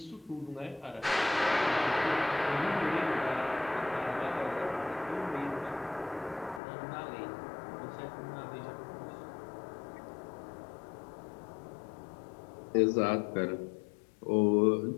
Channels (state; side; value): drops out; right; at 6.6 s